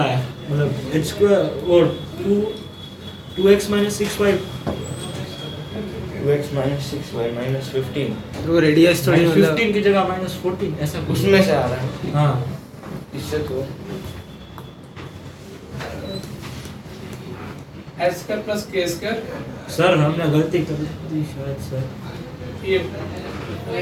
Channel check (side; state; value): both; identical; correlation 1.00